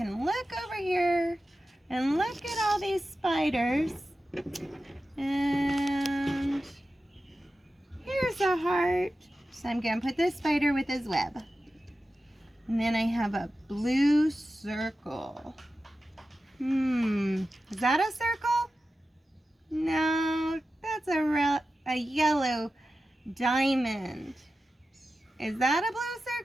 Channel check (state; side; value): normal; both; correlation 0.93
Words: look over here and look at all these spiders. And here's a heart. So I'm going to put this spider with his web. And then I have a blue circle. Is that a circle? No, that's a yellow diamond. Is that a blue